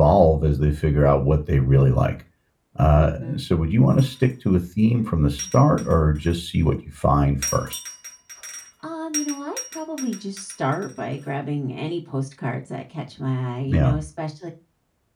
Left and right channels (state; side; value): identical; both; correlation 1.00